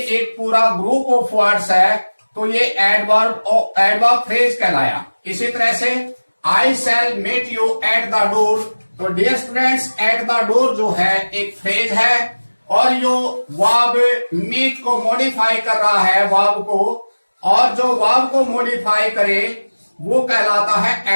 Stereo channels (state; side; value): inverted; both; correlation -1.00